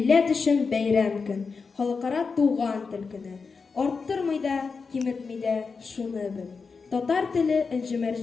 өчен бәйрәм көн. Халыкара туган тел көне. Арттырмый да, киметмий дә, шуны бел. Татар теле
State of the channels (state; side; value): quieter; right; 4.9 dB